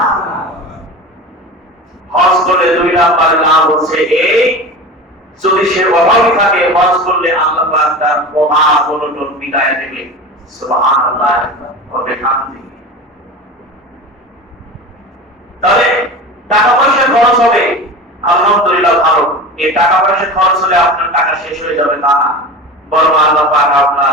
হজ করলে দুই নাম্বার লাভ হচ্ছে এই, যদি সে অভাবী থাকে হজ করলে আল্লাহ পাক তার অভাব অনটন মিটায় দেবে। সুবহানাল্লাহ। তাহলে টাকা পয়সা খরচ হবে, আলহামদুলিল্লাহ ভালো। এই টাকা পয়সা খরচ হলে আপনার টাকা শেষ হয়ে যাবে তা না, বরং আল্লাহ পাক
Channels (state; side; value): normal; both; correlation 0.31